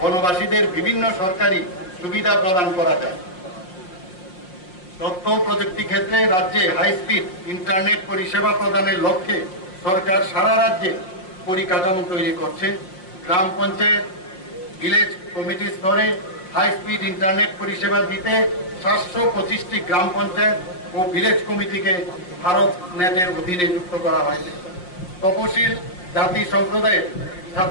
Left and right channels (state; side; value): late; right; 5.6 ms